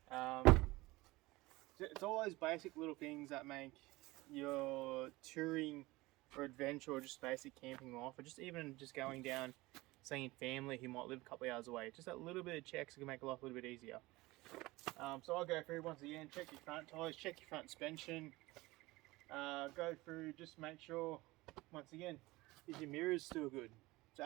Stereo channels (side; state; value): left; quieter; 20.7 dB